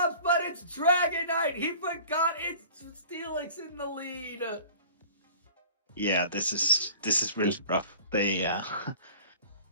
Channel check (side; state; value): both; inverted; correlation -0.45